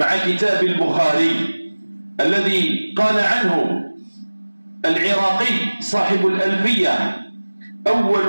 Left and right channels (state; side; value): inverted; both; correlation -1.00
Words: كتاب البخاري الذي قال عنه العراقي صاحب الألفية: